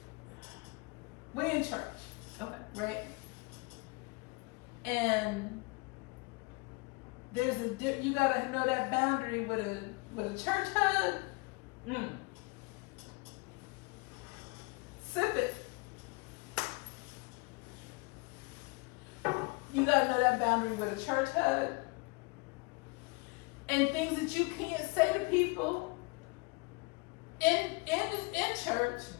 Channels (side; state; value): right; quieter; 28.0 dB